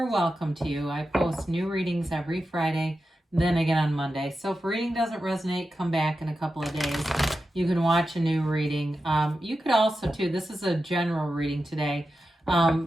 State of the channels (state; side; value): normal; both; correlation 0.91